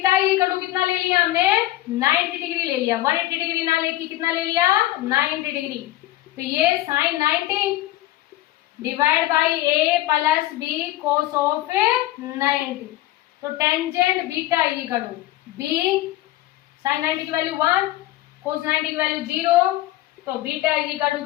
इक्वल टू कितना ले लिया हमने, 90 डिग्री ले लिया, 180 डिग्री ना लेके कितना ले लिया, 90 डिग्री। तो ये sine 90 divide by A plus B cos of 90। तो tangent beta equal to B, sine 90 की वैल्यू 1, कोस 90 की वैल्यू 0, तो बीटा इक्वल टू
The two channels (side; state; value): right; quieter; 16.0 dB